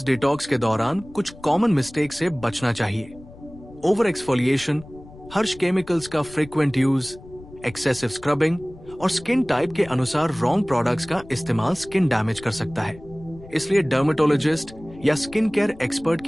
डिटॉक्स के दौरान कुछ कॉमन मिस्टेक से बचना चाहिए। ओवर एक्सफोलिएशन, हर्ष केमिकल्स का फ्रीक्वेंट यूज, एक्सेसिव स्क्रबिंग और स्किन टाइप के अनुसार रॉन्ग प्रोडक्ट्स का इस्तेमाल स्किन डैमेज कर सकता है। इसलिए डर्मेटोलॉजिस्ट या स्किन केयर एक्सपर्ट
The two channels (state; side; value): noise; left; rumble, 19 dB below the sound